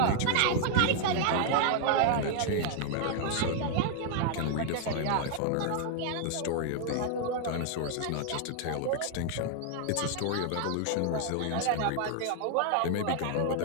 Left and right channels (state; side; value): different; both; correlation 0.00